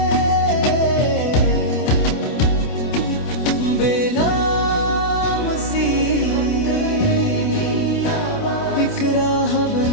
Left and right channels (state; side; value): late; right; 28 ms